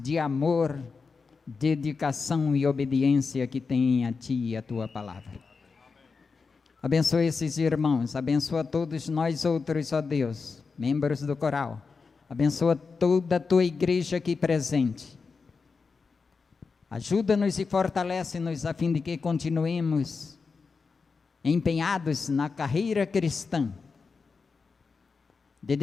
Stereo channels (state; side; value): quieter; right; 4.8 dB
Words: de amor, dedicação e obediência que têm a Ti e a Tua palavra. Abençoa esses irmãos, abençoa todos nós outros, ó Deus, membros do coral. Abençoa toda a Tua igreja aqui presente. Ajuda-nos e fortalece-nos a fim de que continuemos empenhados na carreira cristã,